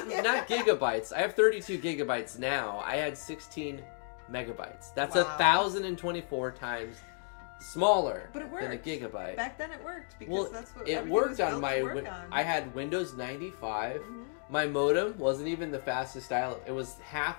gigabytes. I have 32 gigabytes now. I had 16 megabytes. That's Wow. 1,024 times smaller But it worked. than a gigabyte. Back then it worked because that's what it everything was worked on built my to work on. I had Windows 95. Mhm. My modem wasn't even the fastest dial-up. It was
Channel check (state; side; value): silent; right; 56 dB below the other